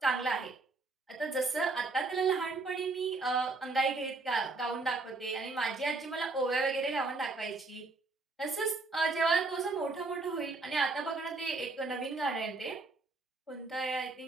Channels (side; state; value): left; quieter; 3.5 dB